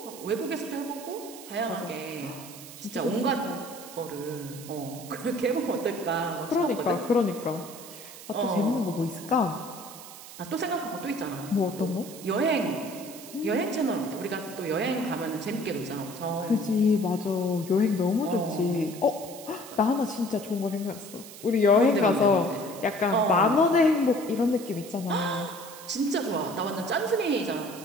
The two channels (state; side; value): noise; right; hiss, 15 dB below the sound